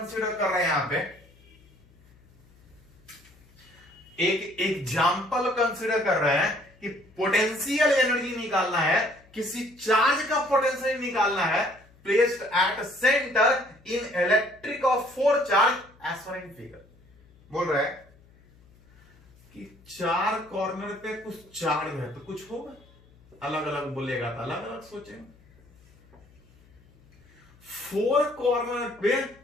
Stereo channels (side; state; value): left; noise; hum, 28 dB below the sound